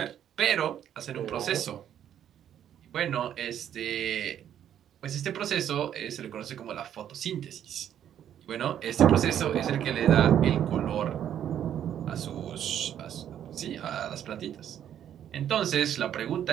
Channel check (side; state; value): left; quieter; 10.1 dB